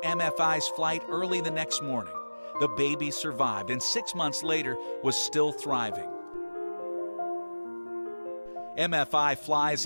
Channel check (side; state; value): both; inverted; correlation -1.00